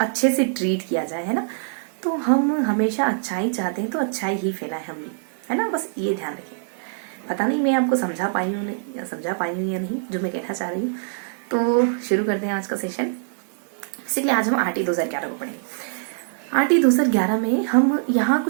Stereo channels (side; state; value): left; silent; digital silence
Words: अच्छे से ट्रीट किया जाए, है ना। तो हम हमेशा अच्छाई चाहते हैं तो अच्छाई ही फैलाए हम भी, है ना। बस ये ध्यान रखें। पता नहीं मैं आपको समझा पाई हूँ या नहीं जो मैं कहना चाह रही हूँ। तो शुरू करते हैं आज का सेशन। बेसिकली आज हम आरटी 2011 को पढ़ेंगे। आरटी 2011 में हम यहाँ